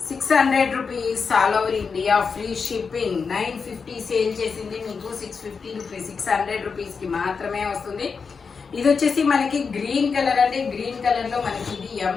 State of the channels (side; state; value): right; quieter; 5.4 dB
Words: 600 rupees all over India, free shipping. 950 sale చేసింది మీకు 650 రూపీస్, 600 రూపీస్ కి మాత్రమే వస్తుంది. ఇది వచ్చేసి మనకి గ్రీన్ కలర్ అండి. గ్రీన్ కలర్ లో మనకి ఇది